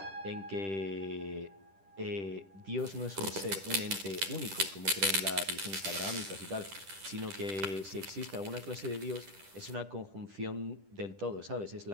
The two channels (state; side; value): late; left; 10 ms